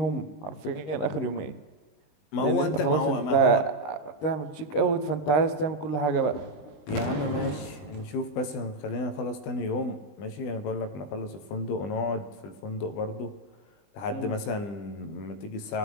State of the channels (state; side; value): late; right; 20 ms